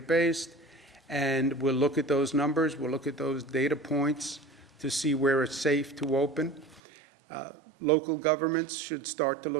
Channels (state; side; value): drops out; left; at 6.8 s